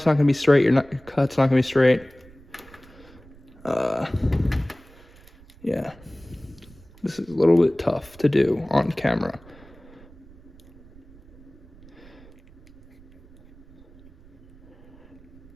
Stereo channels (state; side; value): noise; right; rumble, 23 dB below the sound